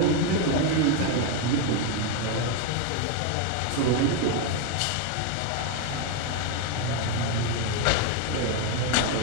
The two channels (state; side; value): different; both; correlation 0.01